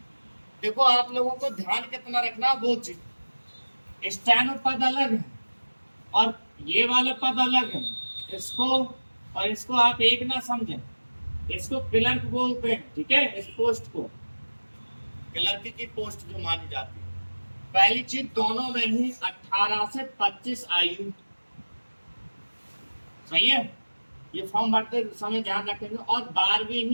देखो आप लोगों को ध्यान कितना रखना, वो चीज स्टेनो पद अलग है और ये वाला पद अलग है। इसको और इसको आप एक ना समझें, इसको क्लर्क बोलते हैं, ठीक है। इस पोस्ट को क्लर्क की पोस्ट जो मानी जाती है। पहली चीज, दोनों में ही 18 से 25 आयु, सही है। ये फॉर्म भरते समय ध्यान रखेंगे, और 12वीं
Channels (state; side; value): inverted; both; correlation -1.00